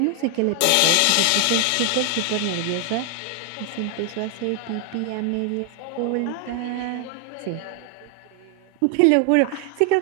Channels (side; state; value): both; different; correlation 0.00